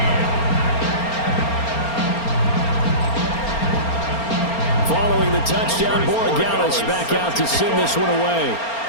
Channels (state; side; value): late; right; 4.3 ms